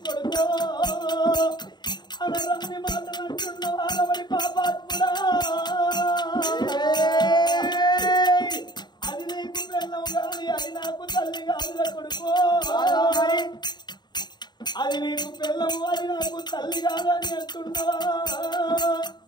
కొడుకో అనరన్ని మాటలు అంటున్నావా అలవడి పాపాత్ముడా. అది నీకు పెళ్ళం కాని అది నాకు తల్లి కాదురా కొడుకో. అది నీకు పెళ్ళము అది నాకు తల్లి కాదని అంటున్నావా?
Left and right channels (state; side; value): late; right; 0.21 ms